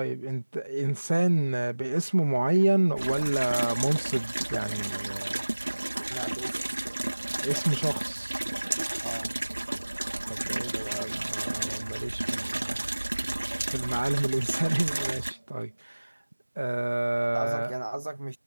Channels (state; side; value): inverted; both; correlation -1.00